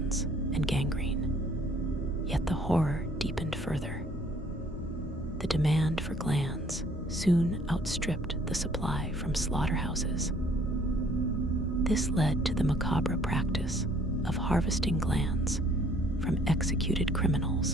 and gangrene. Yet the horror deepened further. The demand for glands soon outstripped the supply from slaughterhouses. This led to the macabre practice of harvesting glands from executed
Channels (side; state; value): both; normal; correlation 0.60